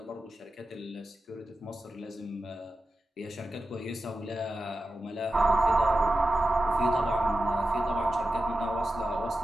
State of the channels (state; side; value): normal; both; correlation 0.92